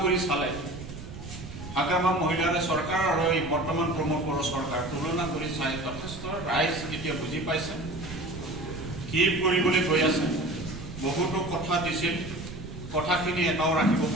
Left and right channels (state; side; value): noise; right; rumble, 11 dB below the sound